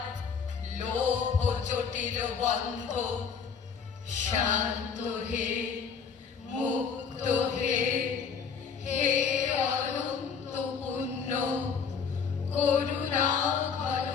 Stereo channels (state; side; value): quieter; right; 6.3 dB